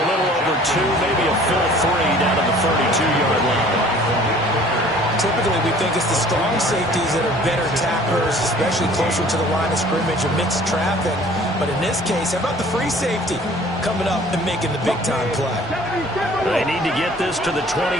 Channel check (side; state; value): both; normal; correlation 0.51